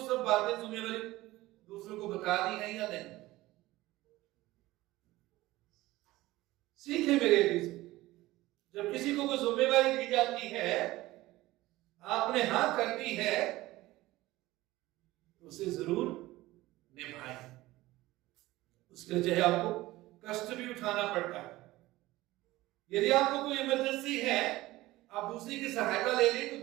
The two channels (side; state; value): left; quieter; 17.9 dB